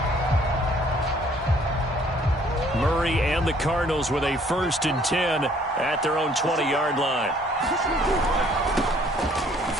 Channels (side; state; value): both; normal; correlation 0.60